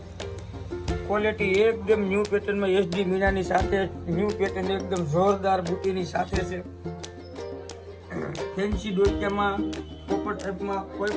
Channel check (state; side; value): identical; both; correlation 1.00